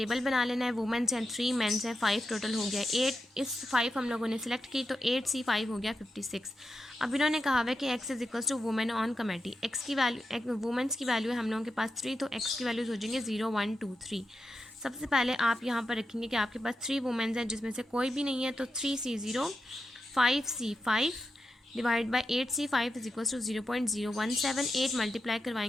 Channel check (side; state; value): both; normal; correlation 0.88